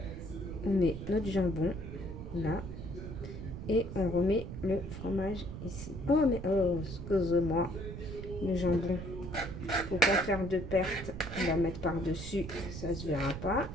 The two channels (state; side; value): noise; right; rumble, 9 dB below the sound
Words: On met notre jambon là. Et on remet le fromage ici. Oh, mais oh, excusez-moi. Le jambon. Faut pas faire de perte. On va mettre par-dessus. Ça se verra pas.